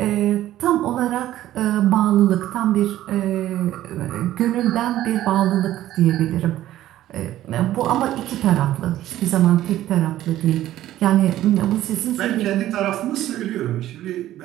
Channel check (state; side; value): quieter; left; 13.7 dB